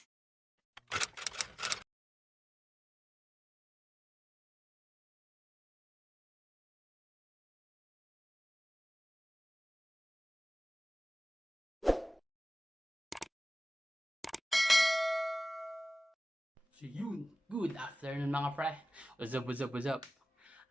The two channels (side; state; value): both; normal; correlation 0.97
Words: So yun, good afternoon mga pre. What's up?